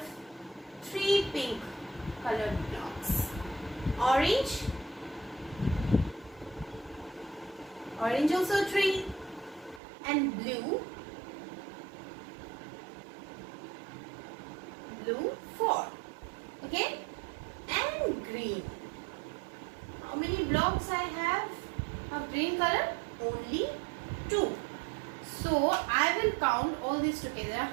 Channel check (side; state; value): left; drops out; at 9.8 s